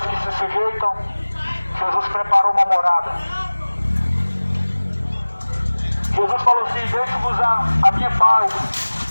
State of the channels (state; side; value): inverted; both; correlation -1.00